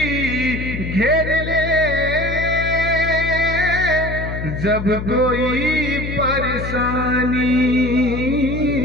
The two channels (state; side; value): noise; left; hum, 6 dB below the sound